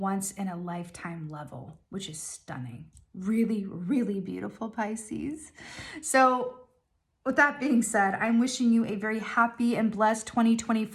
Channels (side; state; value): both; identical; correlation 1.00